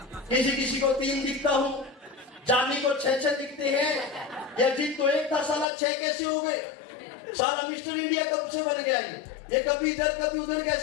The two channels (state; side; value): drops out; right; at 5.7 s